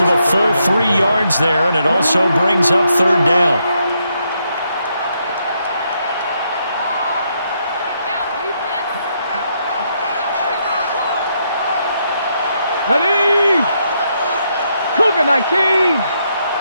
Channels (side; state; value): both; inverted; correlation -0.77